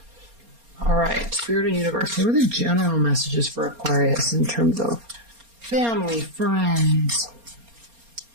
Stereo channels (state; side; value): late; left; 4.3 ms